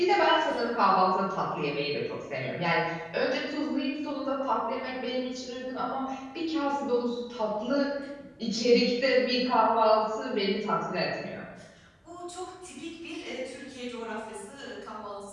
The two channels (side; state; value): both; identical; correlation 1.00